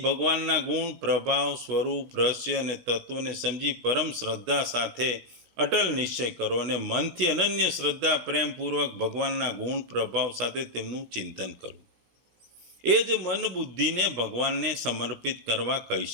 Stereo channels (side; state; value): left; late; 16 ms